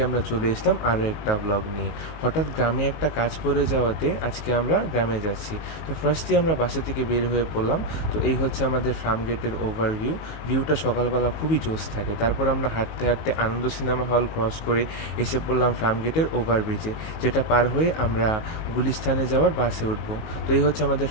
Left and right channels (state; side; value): late; right; 19 ms